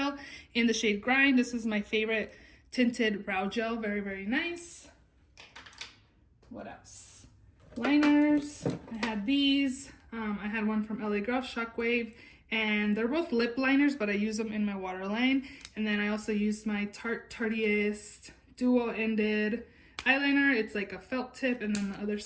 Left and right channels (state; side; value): identical; both; correlation 1.00